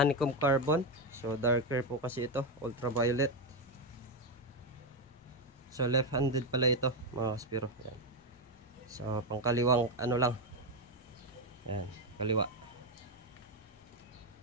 carbon. So darker po kasi ito, ultraviolet. So left-handed pala ito mga kaspiro. Yan. So pangkaliwang lang. Yan, kaliwa.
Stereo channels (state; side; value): normal; both; correlation 0.09